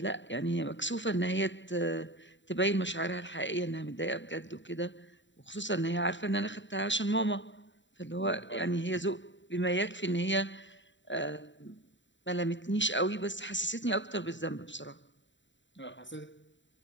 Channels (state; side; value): late; right; 0.54 ms